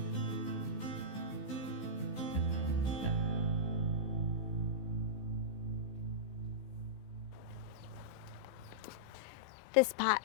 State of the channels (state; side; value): late; right; 15 ms